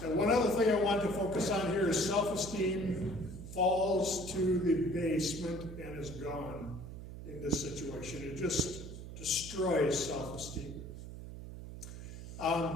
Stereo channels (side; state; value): right; noise; hum, 11 dB below the sound